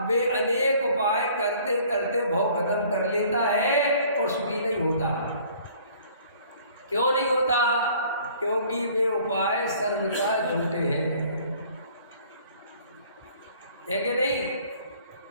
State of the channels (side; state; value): both; inverted; correlation -0.55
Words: वे अनेक उपाय करते करते भव खत्म कर लेता है और सुखी नहीं होता। क्यों नहीं होता? क्योंकि वे उपाय सर्वथा झूठे हैं। है कि नहीं?